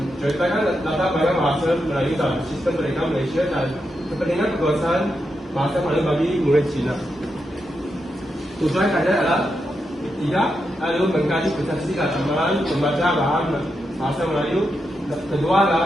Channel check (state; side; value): normal; both; correlation 0.85